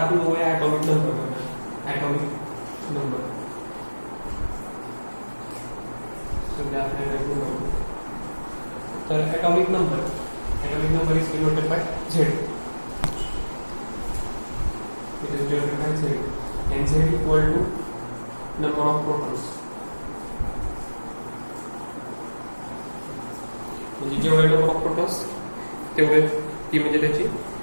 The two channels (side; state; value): both; inverted; correlation -1.00